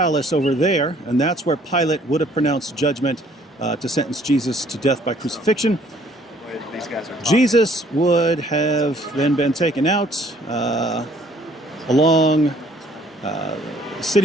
over there, and that's where Pilate would have pronounced judgment to sentence Jesus to death by crucifixion. Jesus would have then been taken out along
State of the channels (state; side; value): normal; both; correlation 0.60